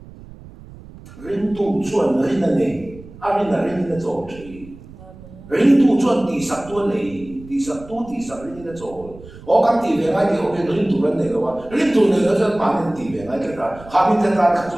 rin tu chuan rin na nei a rin na rin na zo chi rin tu chuan ti sak tu nei ti sak rin na zo o kan ti ve nga ti o rin tu ran nei lo wa rin tu nei lo chuan ma rin ti ve nga ka ha min ta ta ka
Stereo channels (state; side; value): noise; right; rumble, 19 dB below the sound